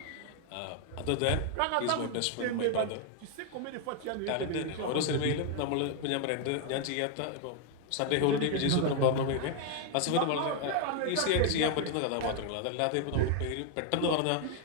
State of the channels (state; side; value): different; both; correlation 0.01